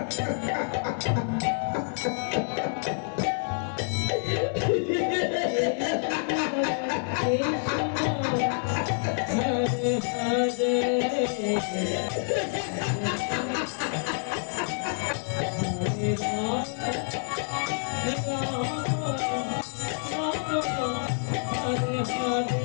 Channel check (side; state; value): right; silent; digital silence